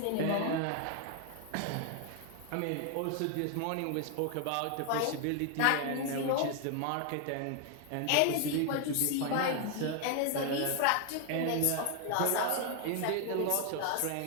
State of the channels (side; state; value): both; different; correlation 0.00